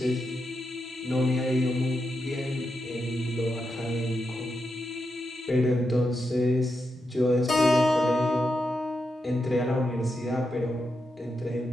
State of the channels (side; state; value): both; normal; correlation 0.86